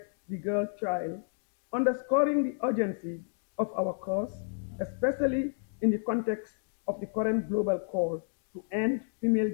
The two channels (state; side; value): silent; right; digital silence